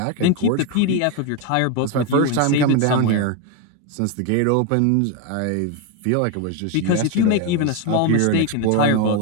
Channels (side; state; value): both; different; correlation 0.02